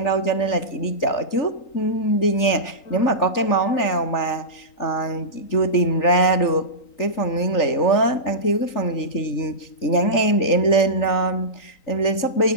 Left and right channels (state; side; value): late; right; 3.9 ms